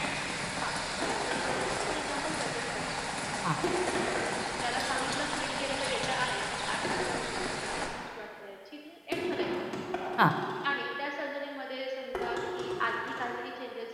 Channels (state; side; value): identical; both; correlation 1.00